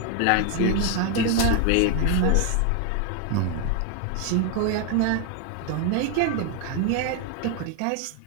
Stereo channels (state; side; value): different; both; correlation 0.01